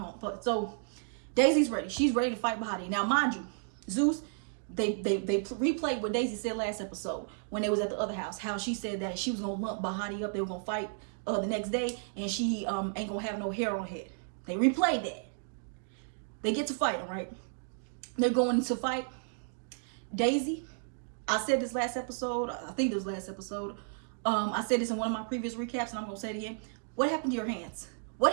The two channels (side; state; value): left; silent; digital silence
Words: own. But so Daisy's ready. She's ready to fight Bahati. Now, mind you, Zeus, they replayed what Daisy said last episode when they was at the other house. How she said that she was gonna lump Bahati up. They were gonna fight the next day, and she ain't gonna have no hair on her head. They replayed that. They get to fighting, right? They're going to fight. Daisy, I said this last episode. I think it was last episode. I said this in one of my previous recaps, and I'm gonna say it again. What happened to your hands?